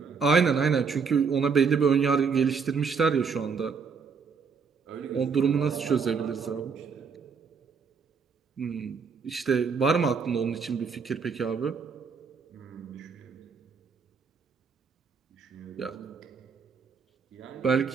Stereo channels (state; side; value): quieter; left; 5.6 dB